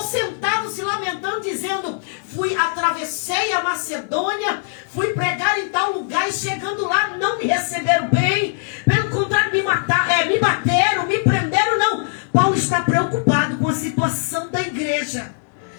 sentado se lamentando, dizendo, atravessei a Macedônia, fui pregar em tal lugar e chegando lá não me receberam bem, pelo contrário me bateram, me prenderam, não. Paulo está preocupado com a situação da igreja.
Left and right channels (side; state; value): right; silent; digital silence